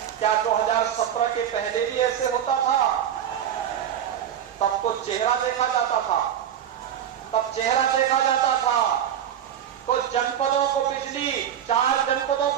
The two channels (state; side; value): quieter; left; 9.7 dB